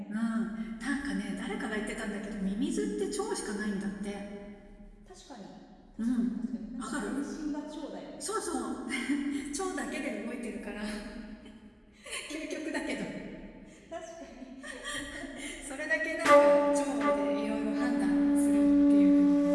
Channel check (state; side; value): identical; both; correlation 1.00